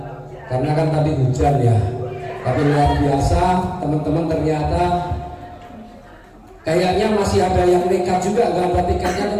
karena kan tadi hujan ya. Tapi luar biasa, teman-teman, ternyata kayaknya masih ada yang nekat juga, nggak ada tiketnya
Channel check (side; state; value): both; identical; correlation 1.00